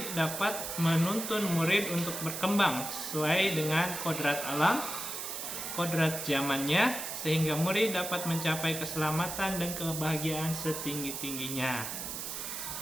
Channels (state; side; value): noise; right; hiss, 5 dB below the sound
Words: dapat menuntun murid untuk berkembang sesuai dengan kodrat alam, kodrat zamannya, sehingga murid dapat mencapai keselamatan dan kebahagiaan setinggi-tingginya.